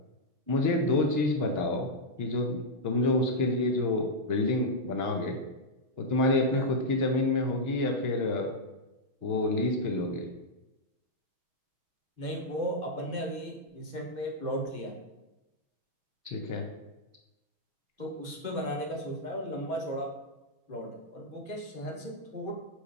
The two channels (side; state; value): left; late; 6.2 ms